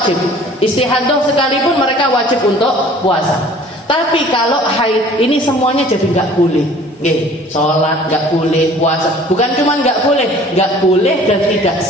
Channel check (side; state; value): both; normal; correlation 0.50